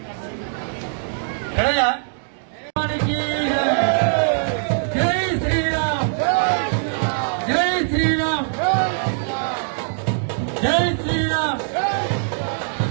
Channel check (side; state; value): left; silent; digital silence